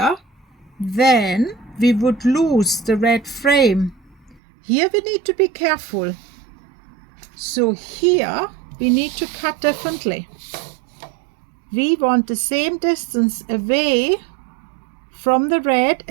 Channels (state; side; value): drops out; left; at 4.4 s